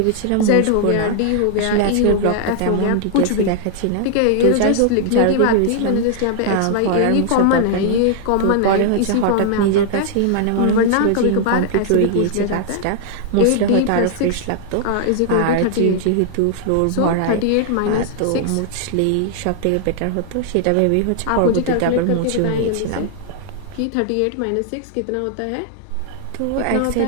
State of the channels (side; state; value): both; different; correlation 0.00